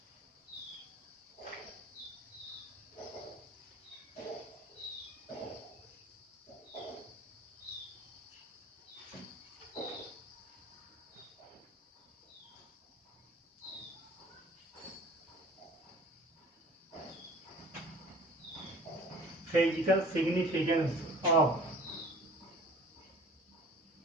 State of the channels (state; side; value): normal; both; correlation 0.47